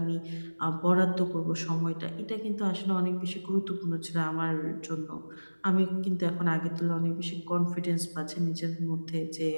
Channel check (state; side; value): inverted; both; correlation -1.00